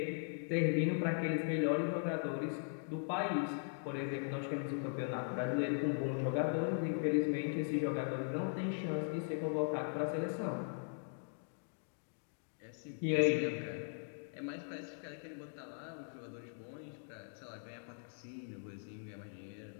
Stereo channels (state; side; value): silent; right; digital silence